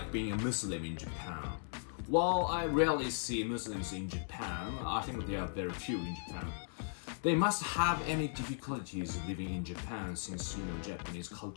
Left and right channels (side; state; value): right; silent; digital silence